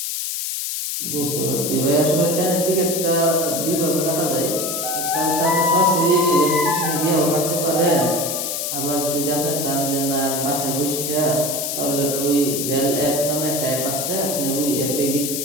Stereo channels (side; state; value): left; noise; hiss, 2 dB below the sound